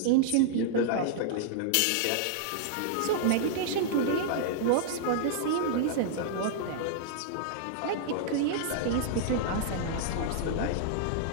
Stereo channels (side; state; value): both; different; correlation -0.01